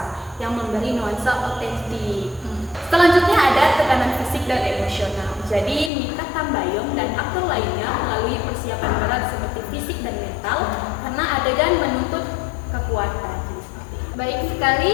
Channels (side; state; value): right; drops out; at 5.9 s